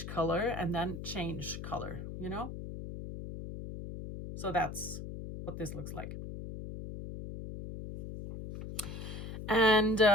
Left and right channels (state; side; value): noise; left; hum, 8 dB below the sound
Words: color and then change color, you know? So that's what this looks like. And